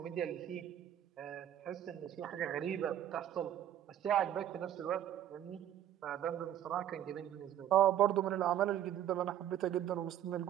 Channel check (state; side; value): quieter; left; 11.2 dB